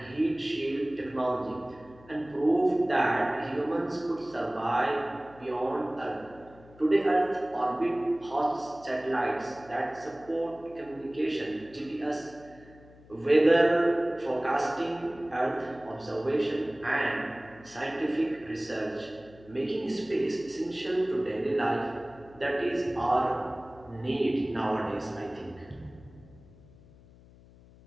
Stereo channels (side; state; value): left; noise; hum, 23 dB below the sound